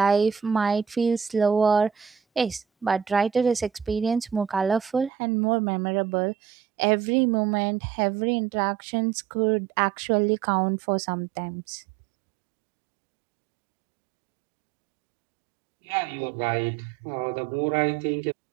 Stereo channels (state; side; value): drops out; left; at 5.1 s